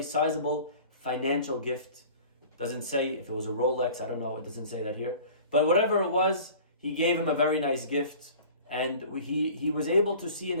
sizable financial gift. Doesn't say if it was a Rolex, I don't know, it doesn't say that here. But whatever it was, he gave him a very nice gift. And he was able to see in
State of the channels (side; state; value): both; inverted; correlation -0.43